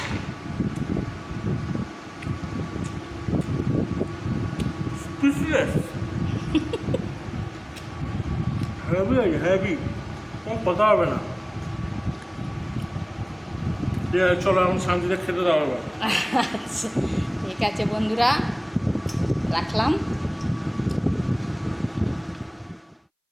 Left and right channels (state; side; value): identical; both; correlation 1.00